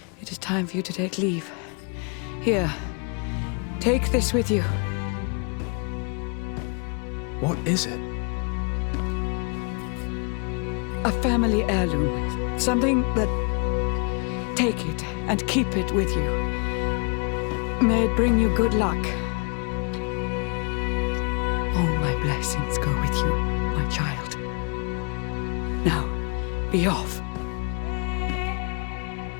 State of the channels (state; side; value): quieter; right; 35.7 dB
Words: It is time for you to take leave. Here, take this with you. What is it? A family heirloom. Something that... Take it and keep it with you. May it bring you good luck. All my blessings go with you, my child. Now, be off.